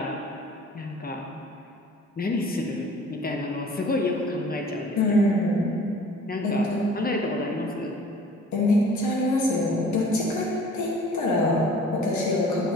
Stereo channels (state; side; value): normal; both; correlation 0.49